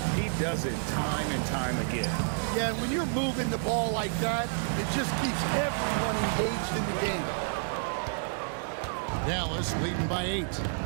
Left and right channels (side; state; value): left; silent; 58 dB below the other